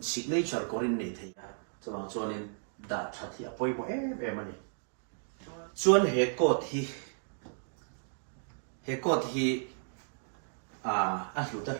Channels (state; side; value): silent; left; digital silence